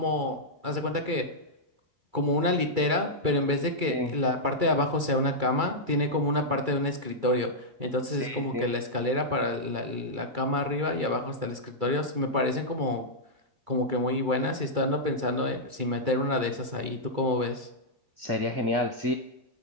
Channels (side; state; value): left; late; 2.3 ms